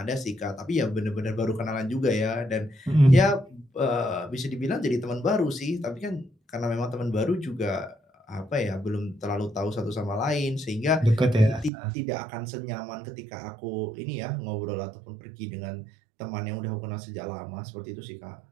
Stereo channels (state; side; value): drops out; left; at 11.7 s